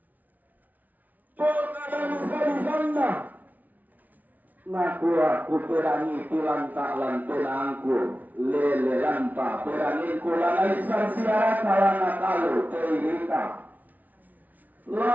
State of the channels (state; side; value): late; left; 0.078 ms